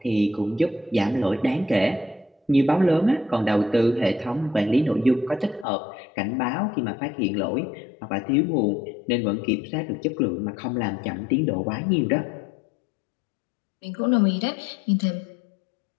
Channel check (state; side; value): drops out; right; at 5.7 s